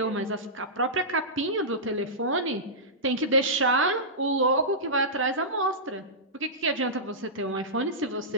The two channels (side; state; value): both; normal; correlation -0.16